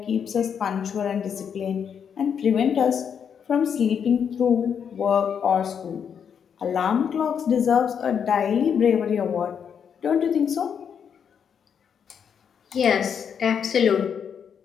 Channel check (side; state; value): right; quieter; 7.5 dB